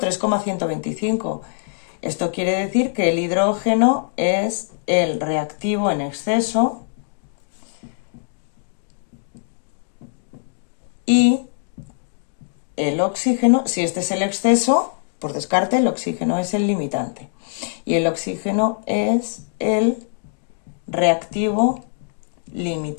Esto quiere decir que el hidrógeno es el reactivo en exceso y el oxígeno, si este es el exceso, por descarte, el oxígeno es el limitante. Y el oxígeno es el reactivo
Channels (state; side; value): silent; right; digital silence